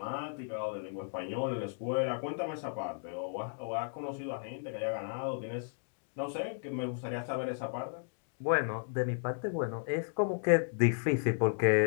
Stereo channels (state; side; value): silent; right; digital silence